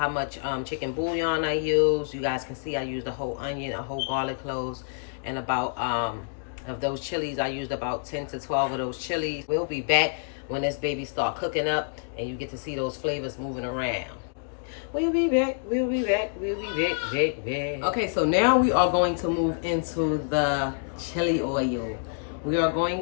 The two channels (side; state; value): right; silent; digital silence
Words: much chicken bouillon I use. You guys can see I used a whole onion, a whole garlic cloves, and about of those chilies, I used about 10 to 12 of those chilies. We'll be back when this baby start cooking up and you get to see those flavors moving around. We'll be back, we'll be back, we'll be back. Okay, so now we are going to move into the chili oil. We are going